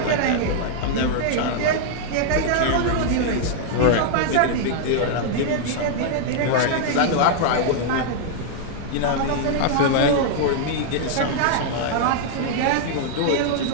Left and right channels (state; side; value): different; both; correlation -0.01